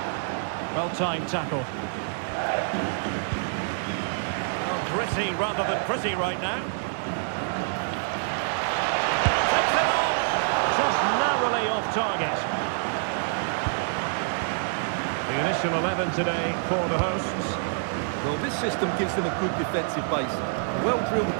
Well-timed tackle. Well, gritty rather than pretty right now. Takes it on. Just narrowly off target. The initial 11 today for the hosts. Well, this system gives them a good defensive base. A well-drilled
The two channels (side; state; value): left; silent; digital silence